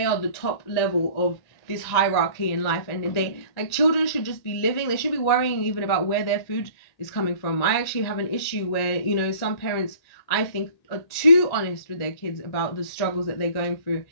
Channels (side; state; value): right; late; 1.8 ms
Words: are the top level of this hierarchy in life, and they, like, children should just be living. They should be worrying even about where their food is coming from. I actually have an issue where, you know, some parents, I think, are too honest with their kids about the struggles that they're going through